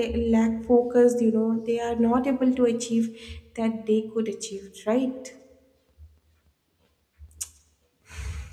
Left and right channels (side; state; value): both; identical; correlation 1.00